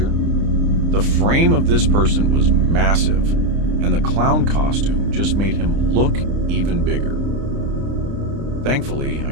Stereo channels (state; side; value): late; left; 30 ms